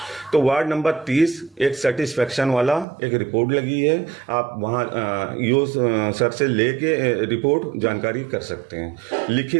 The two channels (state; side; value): drops out; left; at 2.9 s